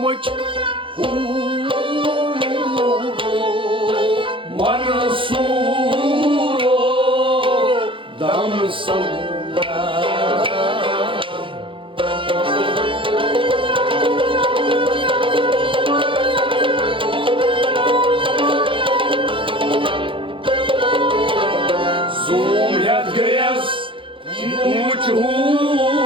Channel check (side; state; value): left; late; 0.25 ms